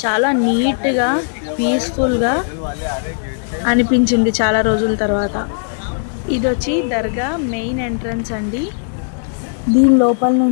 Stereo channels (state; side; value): silent; right; digital silence